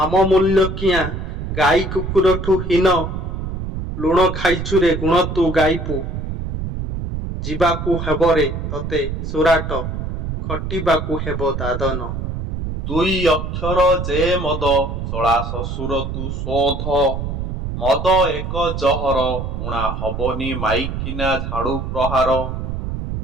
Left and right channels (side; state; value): right; noise; rumble, 4 dB below the sound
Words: ଆମ ମୂଲ୍ୟ କିଆଁ ଗାଈ କୁକୁରଠୁ ହୀନ। ଲୁଣ ଖାଇଛୁରେ ଗୁଣ ତୁ ଗାଇବୁ। ଯିବାକୁ ହେବରେ ତତେ ସୁରାଟ, ଖଟିବାକୁ ହେବ ଦାଦନ। ଦୁଇ ଅକ୍ଷର ଯେ ମଦ, ଶଳା ଶ୍ୱଶୁର ତୁ ଶୋଧ। ମଦ ଏକ ଜହର, ଉଣା ହବନି ମାଇକିନା ଝାଡୁ ପ୍ରହାର।